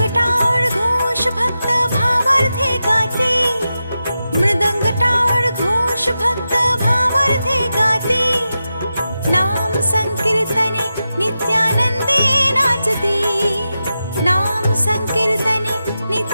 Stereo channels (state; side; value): inverted; both; correlation -0.90